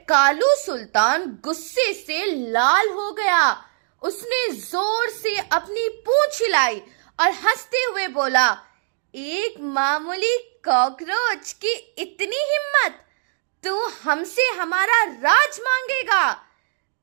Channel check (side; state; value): left; silent; digital silence